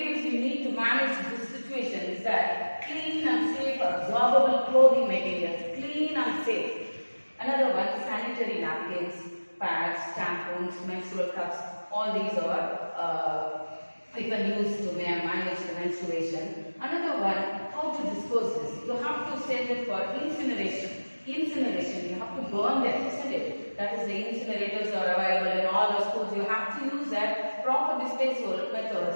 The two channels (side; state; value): both; inverted; correlation -1.00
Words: you need to manage this situation is that clean and safe absorbable clothing materials, clean and safe. Another one, sanitary napkins, pads, tampons, menstrual cups, all these are you can use to manage the menstruation. Another one, how to dispose this. You have to send it for incineration. Incineration, you have to burn them, isn't it? That is, the incinerators are available in all the schools. You have to use that proper disposal